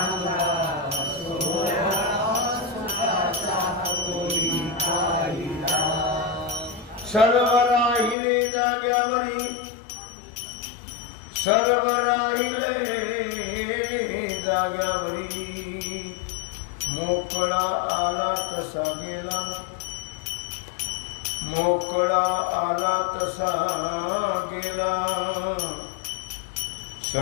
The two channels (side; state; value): right; drops out; at 8.2 s